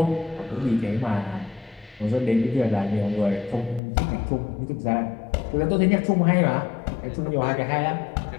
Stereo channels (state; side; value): drops out; right; at 3.8 s